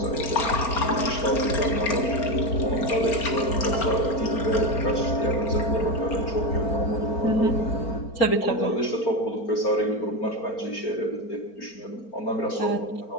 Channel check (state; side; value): late; right; 4.4 ms